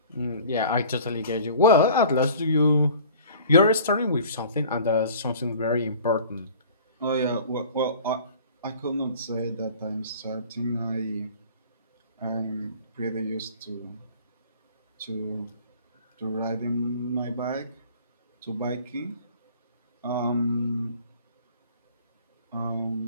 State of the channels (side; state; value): both; inverted; correlation -0.47